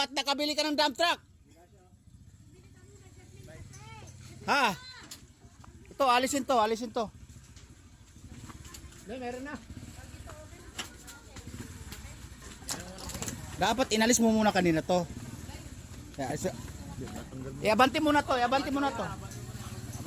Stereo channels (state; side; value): identical; both; correlation 1.00